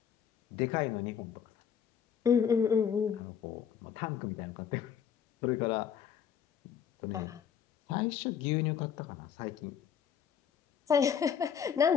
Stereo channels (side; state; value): right; quieter; 8.0 dB